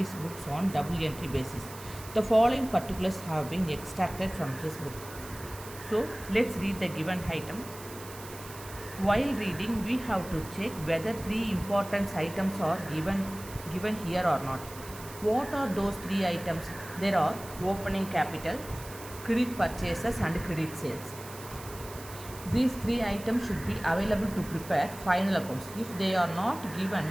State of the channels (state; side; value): noise; right; hiss, 15 dB below the sound